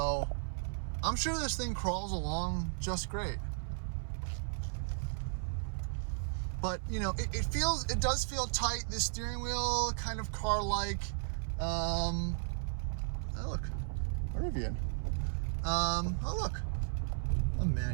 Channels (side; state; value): left; silent; 54 dB below the other